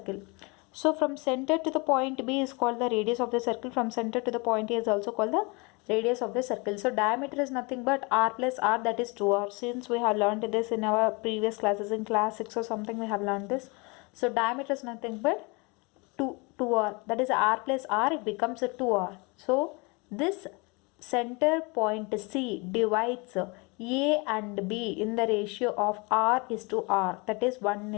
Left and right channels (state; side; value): quieter; right; 28.7 dB